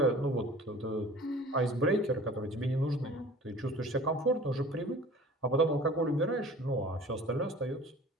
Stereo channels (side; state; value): both; normal; correlation 0.44